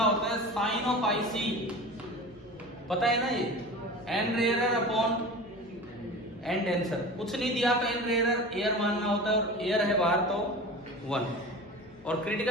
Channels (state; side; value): noise; left; hum, 25 dB below the sound